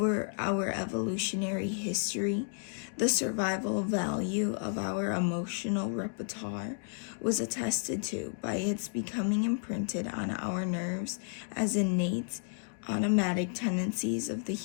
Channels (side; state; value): right; silent; 56 dB below the other